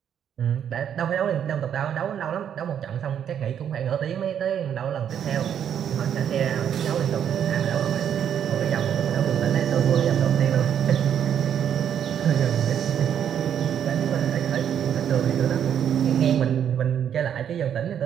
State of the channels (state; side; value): quieter; left; 9.0 dB